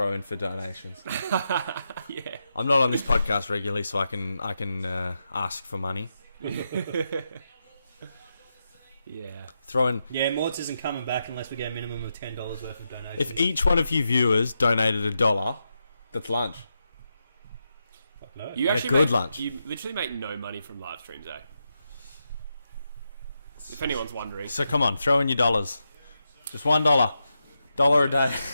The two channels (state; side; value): inverted; both; correlation -0.86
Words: in for donations. Yeah. I'm not on this podcast regularly, so I can ask for money. Yeah. Throw in. Yeah, Morts isn't coming back unless we get a minimum of $10 worth of donations. If each one of you viewers donated $1, that's lunch. No. You And a actually good make- lunch. You literally make no money from live streams, eh? If anyone's wondering. So come on, throw in your dollars. Just $1. $1 a day.